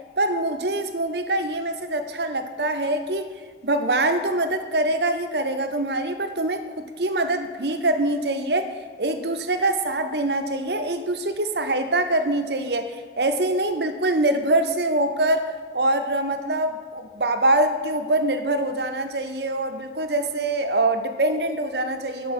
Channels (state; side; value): normal; both; correlation -0.20